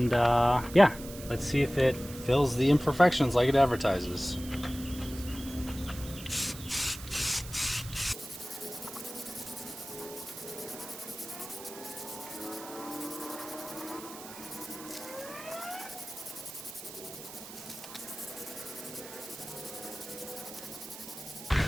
yeah, let's see if it fills the imperfections like it advertises.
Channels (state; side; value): noise; right; hiss, 13 dB below the sound